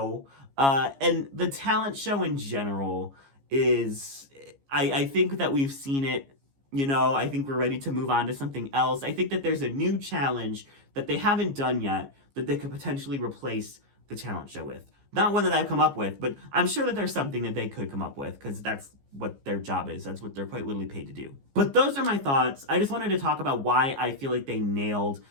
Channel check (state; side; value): late; left; 15 ms